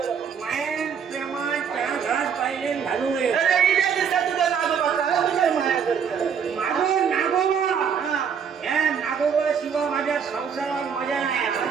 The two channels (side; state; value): left; quieter; 7.2 dB